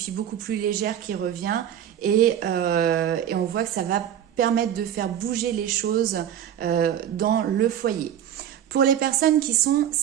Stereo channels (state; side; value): quieter; left; 10.1 dB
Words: beaucoup plus légère qui revient et on voit que ça va permettre de faire bouger les choses dans le foyer. Pour les personnes qui sont